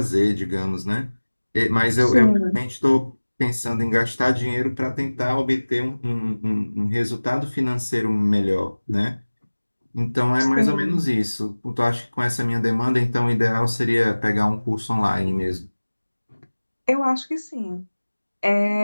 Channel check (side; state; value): both; inverted; correlation -1.00